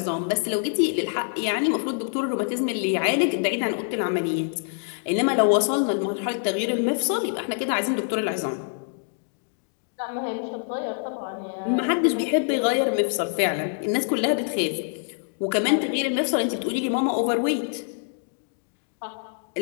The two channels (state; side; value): silent; right; digital silence